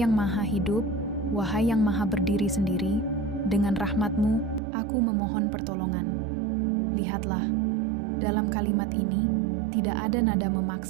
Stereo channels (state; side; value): drops out; left; at 4.6 s